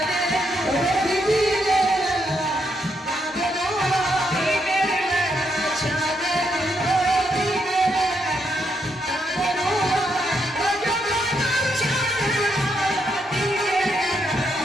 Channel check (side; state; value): both; normal; correlation 0.78